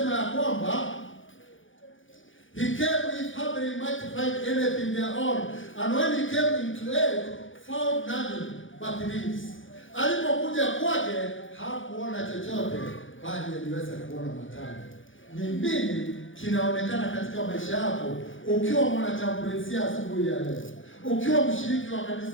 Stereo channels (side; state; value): right; late; 0.57 ms